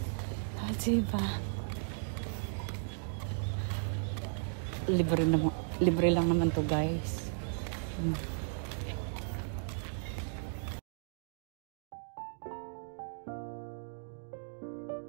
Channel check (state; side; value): silent; left; digital silence